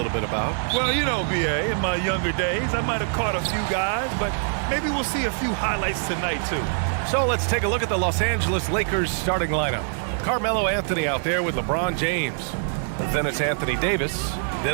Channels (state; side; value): silent; left; 61 dB below the other